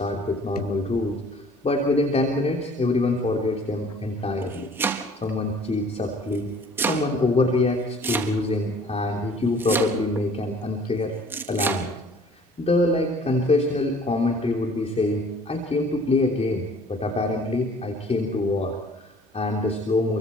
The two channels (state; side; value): normal; both; correlation 0.53